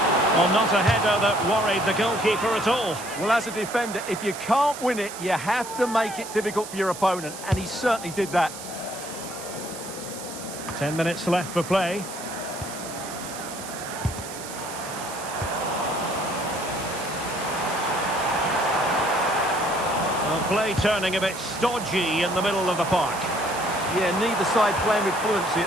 Well, not a header that worried the goalkeeper at all. Well, as a defender, if you can't win it, you have to make it difficult for your opponent, and he certainly did that. 10 minutes left for play. Well, play turning a bit stodgy in the middle of the park. Yeah, neither side playing with fluency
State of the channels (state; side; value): noise; right; hiss, 12 dB below the sound